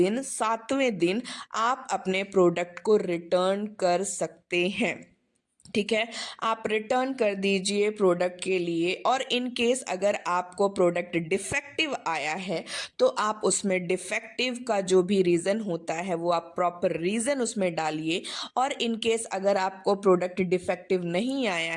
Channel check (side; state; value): both; identical; correlation 1.00